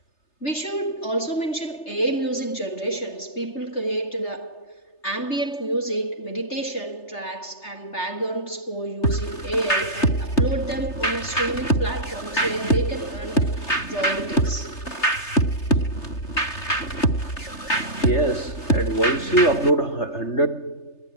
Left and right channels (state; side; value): late; right; 3.3 ms